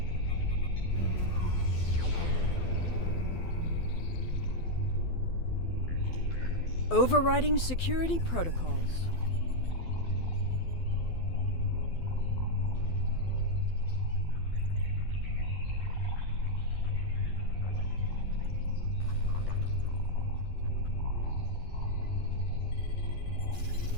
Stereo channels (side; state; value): right; late; 12 ms